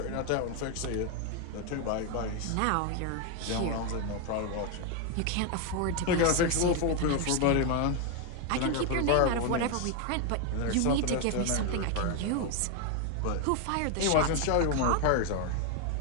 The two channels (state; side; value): different; both; correlation 0.01